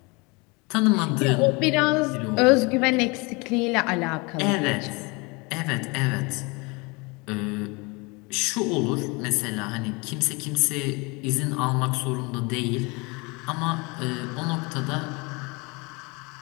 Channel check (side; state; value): right; quieter; 27.6 dB